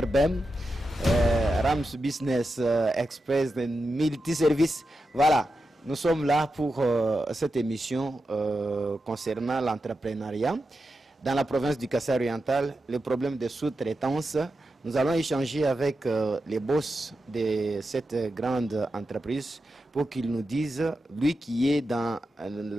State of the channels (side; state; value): both; normal; correlation 0.89